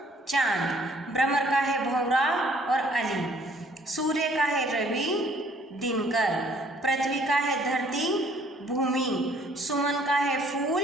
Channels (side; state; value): both; normal; correlation 0.60